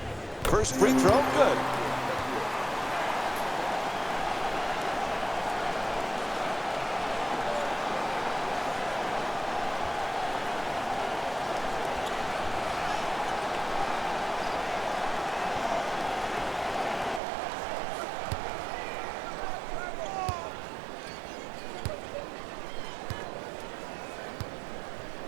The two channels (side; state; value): left; drops out; at 17.2 s